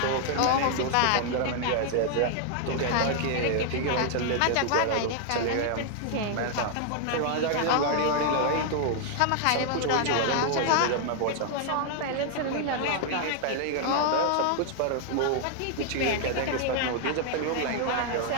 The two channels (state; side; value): different; both; correlation 0.00